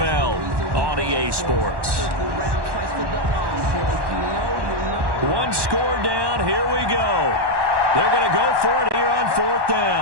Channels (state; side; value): late; left; 1.1 ms